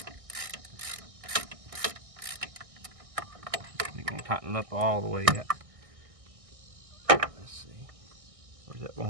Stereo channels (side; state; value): left; late; 1.6 ms